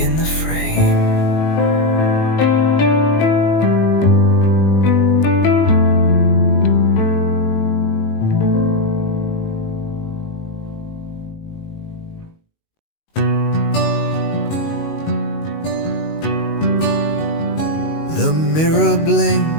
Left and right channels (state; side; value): late; right; 19 ms